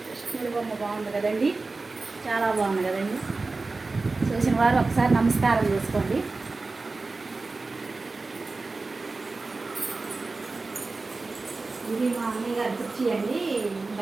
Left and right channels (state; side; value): quieter; left; 3.7 dB